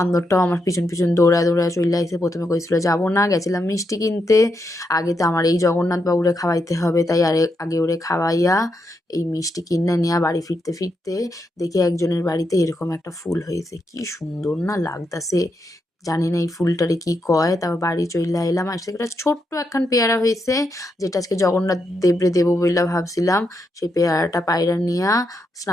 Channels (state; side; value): normal; both; correlation 0.82